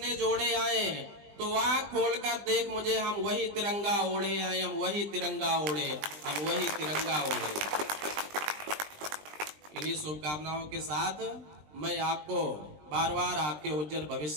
जोड़े आए? तो आँख खोलकर देख मुझे, हम वही तिरंगा ओढ़े आए, हम वही तिरंगा ओढ़े, हम वही तिरंगा ओढ़े। इन्हीं शुभकामनाओं के साथ मैं आपको बार बार आपके उज्जवल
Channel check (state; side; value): late; left; 20 ms